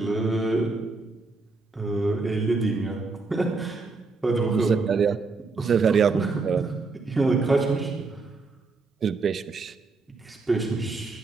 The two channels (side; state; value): left; quieter; 4.0 dB